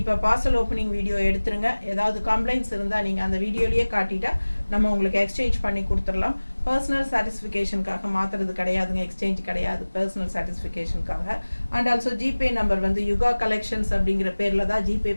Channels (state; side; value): inverted; both; correlation -1.00